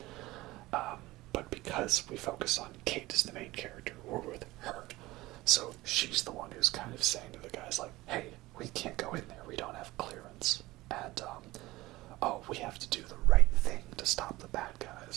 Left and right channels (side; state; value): left; quieter; 19.1 dB